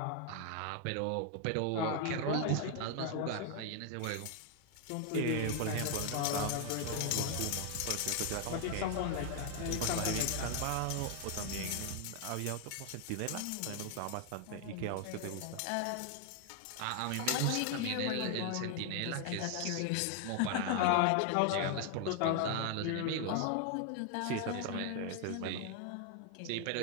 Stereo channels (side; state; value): both; different; correlation 0.00